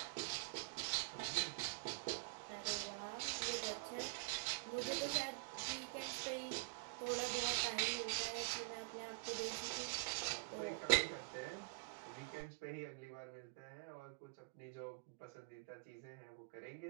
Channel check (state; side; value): quieter; left; 32.0 dB